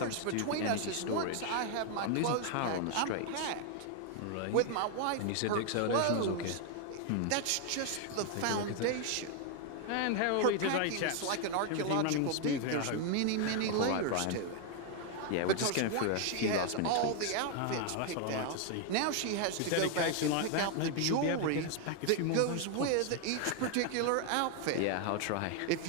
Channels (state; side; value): different; both; correlation 0.00